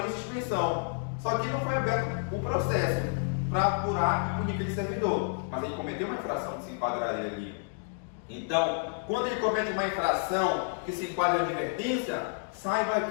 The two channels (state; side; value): silent; right; 58 dB below the other